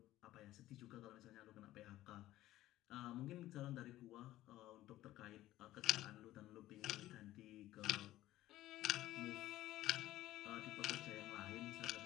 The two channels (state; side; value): quieter; right; 15.2 dB